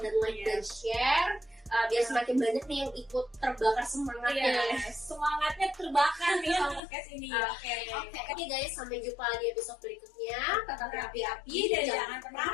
dan like dan share biar semakin banyak nih yang ikut terbakar semangatnya. Semangatnya terbakar nih sama podcast ini. Oke guys, sampai jumpa di episode berikutnya. Tetap api-api Dan jangan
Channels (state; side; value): drops out; right; at 6.8 s